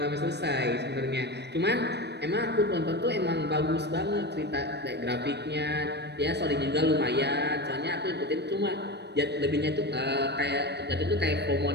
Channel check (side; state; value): left; late; 0.49 ms